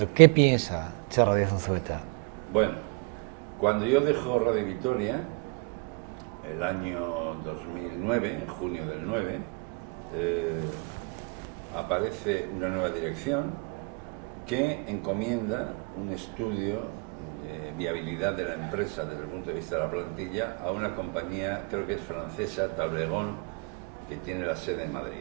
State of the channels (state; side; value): quieter; left; 30.5 dB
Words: ¿Qué piensa Txarra Díaz Unzueta? Bueno, cuando yo dejo Radio Vitoria, el año 2009, en junio del 9, aparece una nueva dirección que encomienda un estudio de viabilidad de la empresa desde el punto de vista de la plantilla a una compañía, creo que es francesa, Tablegón, que tiene la sede en